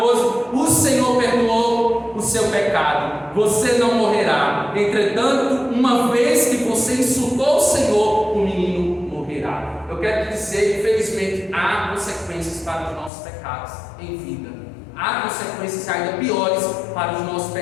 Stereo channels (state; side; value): drops out; right; at 13.1 s